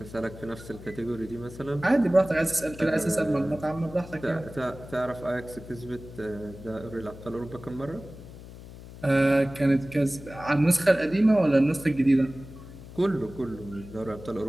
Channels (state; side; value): noise; left; hum, 16 dB below the sound